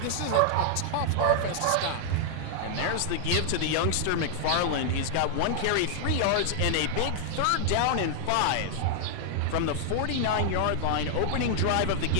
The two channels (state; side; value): different; both; correlation 0.00